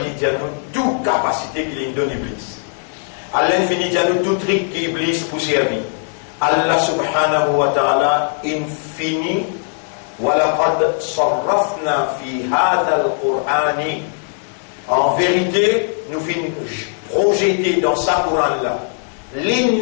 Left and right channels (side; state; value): right; silent; 67 dB below the other